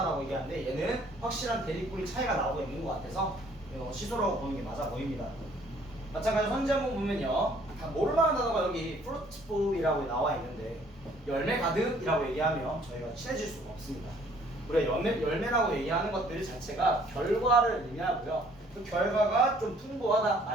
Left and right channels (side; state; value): both; normal; correlation 0.60